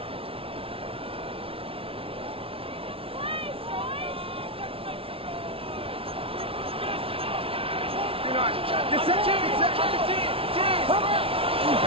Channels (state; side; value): late; left; 0.26 ms